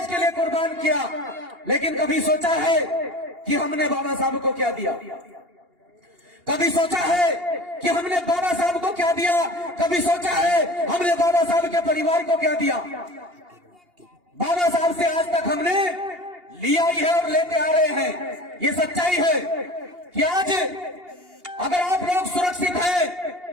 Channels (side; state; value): left; late; 2.8 ms